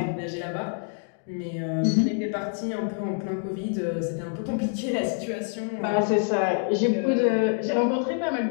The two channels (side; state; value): right; silent; 59 dB below the other